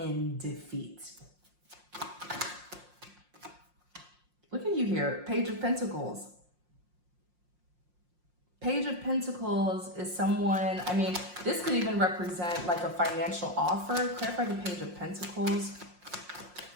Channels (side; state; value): left; late; 5.6 ms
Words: defeat. Look at you here, Page of Pentacles. Page of Pentacles is someone, I mean, this could even represent like a financial offer. Clarify the Page of Pentacles.